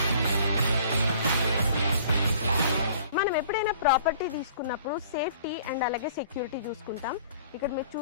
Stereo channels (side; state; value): both; inverted; correlation -0.51